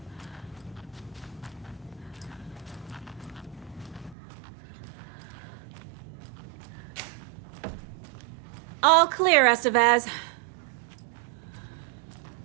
All clear, Estevez.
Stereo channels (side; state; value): left; drops out; at 4.2 s